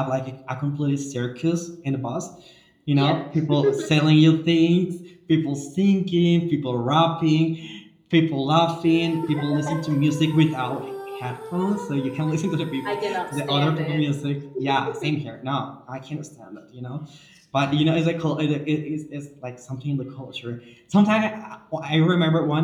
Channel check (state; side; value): identical; both; correlation 1.00